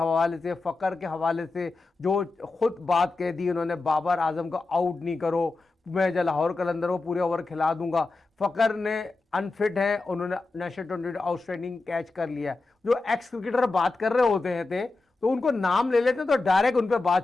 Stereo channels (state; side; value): quieter; right; 3.5 dB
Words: से, फ़खर के हवाले से, जो खुद बात कह दी उन्होंने बाबर आजम को आउट नहीं करो, मैं जो लाहौर कलंदर को पूरे ओवर खिला दूंगा। फ़खर ने अनफिट है, उन्होंने नेशनल ट्वेंटी आउटस्टैंडिंग कैच कर लिया। जो एक्स क्रिकेटर बात कर रहे होते हैं तो उनको नाम ले लेते हैं तो डायरेक्ट उन पर